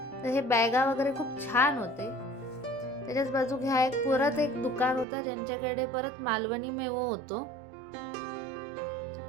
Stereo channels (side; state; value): left; drops out; at 5.1 s